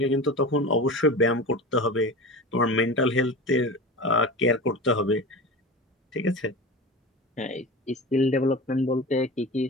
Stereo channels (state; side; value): normal; both; correlation 0.31